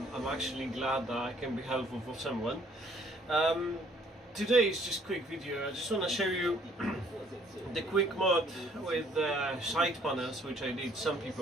actually glad that I can be helpful for someone. Today is just a quick video. I just want to show you the quick mod with side panels, which I did. Some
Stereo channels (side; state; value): both; normal; correlation 0.61